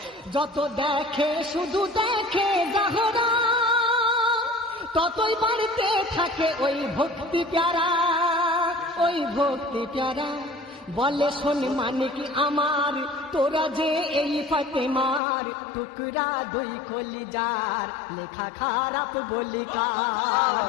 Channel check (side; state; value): right; drops out; at 15.2 s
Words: যত দেখে শুধু দেখে জাহরা, ততই বাড়তে থাকে ওই ভক্তি প্যারা, ওই ভক্তি প্যারা। বলে শোন মানিক আমার, তোরা যে এই ফাতেমার টুকরা দুই কলিজার, লেখা খারাপ বলি